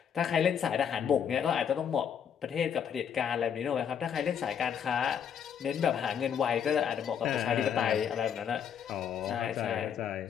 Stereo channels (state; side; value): quieter; right; 8.0 dB